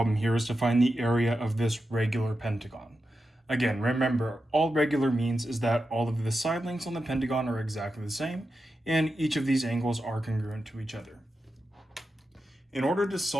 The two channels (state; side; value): normal; both; correlation 0.89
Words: here is to find the area of this regular pentagon. Again, remember, all regular means is that all of the side lengths on the pentagon are exactly the same, and each of these angles are congruent to each other. In order to